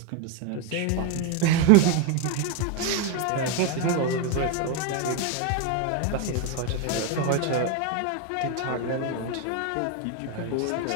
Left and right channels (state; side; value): different; both; correlation 0.02